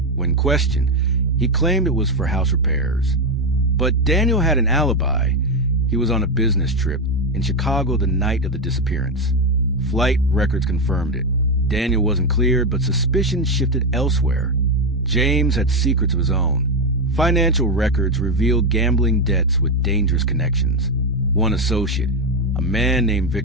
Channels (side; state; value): both; normal; correlation 0.08